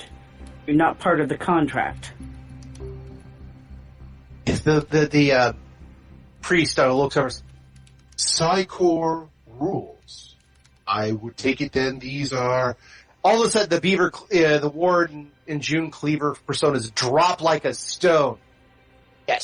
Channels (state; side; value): identical; both; correlation 1.00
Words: You're not part of the contract. If the priest looks over. Psychor rules. I would take it then these are... All of a sudden, the Warden and June Cleaver personas drop like a stone.